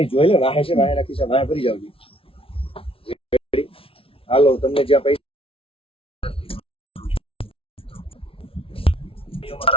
જોઈ લે, વાહે છે, વાહે રાખી છે, વાહે ભરી જાવ. હાલો, તમને જ્યાં પૈસા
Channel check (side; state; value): right; late; 0.26 ms